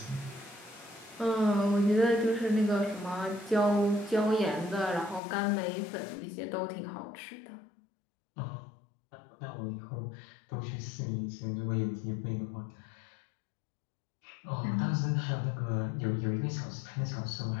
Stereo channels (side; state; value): right; drops out; at 5.2 s